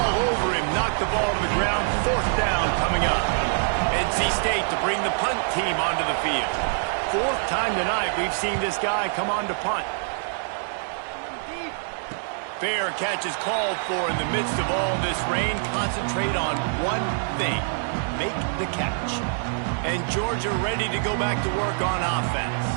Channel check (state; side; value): silent; left; digital silence